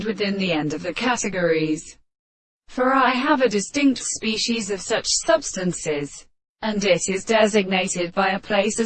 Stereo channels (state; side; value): identical; both; correlation 1.00